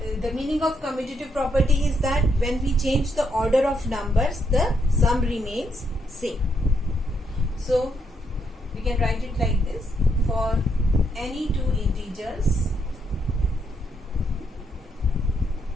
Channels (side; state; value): both; normal; correlation 0.77